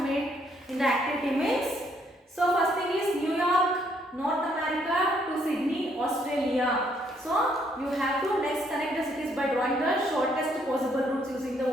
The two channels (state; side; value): normal; both; correlation 0.70